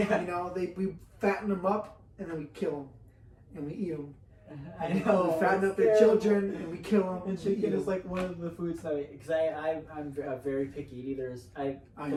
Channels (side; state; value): both; identical; correlation 1.00